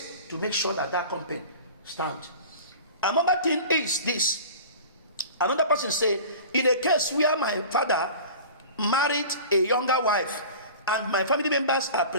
to make sure that that company stands. Another thing is this. Another person say, in a case where my father married a younger wife and my family members are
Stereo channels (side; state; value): both; inverted; correlation -0.39